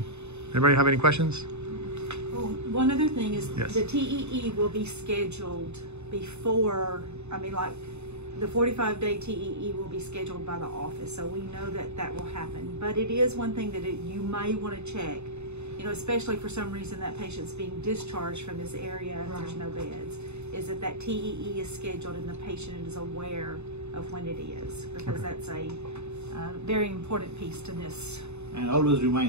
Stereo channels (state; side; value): late; left; 0.81 ms